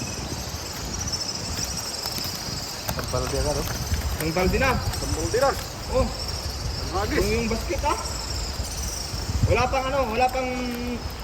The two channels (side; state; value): both; identical; correlation 1.00